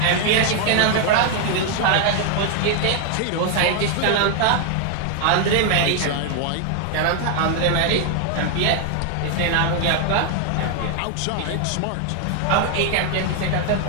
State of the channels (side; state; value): both; different; correlation 0.00